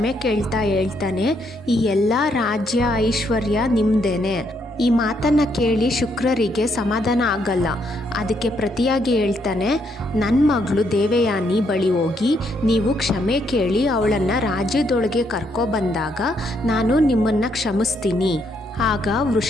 ಕೇಳ್ತಾ ಹೇಳ್ತಾನೆ, ಈ ಎಲ್ಲ ರಾಜ್ಯ ಐಶ್ವರ್ಯ ನಿಮ್ದೇನೆ. ಈ ಮಾತನ್ನು ಕೇಳಿ ಶುಕ್ರರಿಗೆ ಸಮಾಧಾನ ಆಗಲ್ಲ. ಅದಕ್ಕೆ ಪ್ರತಿಯಾಗಿ ಹೇಳ್ತಾನೆ, ನನ್ನ ಮಗಳು ದೇವಯಾನಿ ಬಳಿ ಹೋಗಿ ನೀವು ಕ್ಷಮೆ ಕೇಳಿ ಅವಳನ್ನು ರಾಜ್ಯದೊಳಗೆ ಕರ್ಕೊಬಂದಾಗ ನಾನು ನಿಮ್ಮನ್ನು ಕ್ಷಮಿಸ್ತೀನಿ. ಆಗ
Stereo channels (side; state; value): both; normal; correlation 0.74